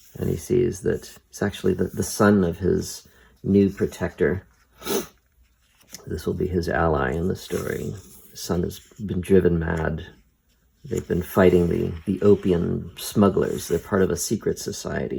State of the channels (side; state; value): both; identical; correlation 1.00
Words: And he sees that it's actually the son of his new protector. This will be his ally in the story. His son has been driven mad. They've been fighting the opium smugglers. They're part of a secret